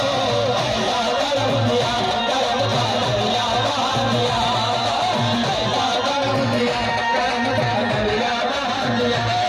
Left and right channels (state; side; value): identical; both; correlation 1.00